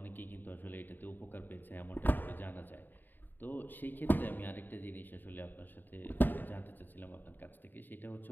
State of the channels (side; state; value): right; late; 0.090 ms